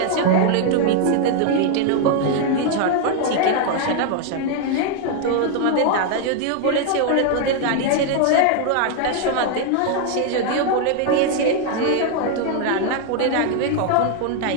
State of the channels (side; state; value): both; different; correlation 0.00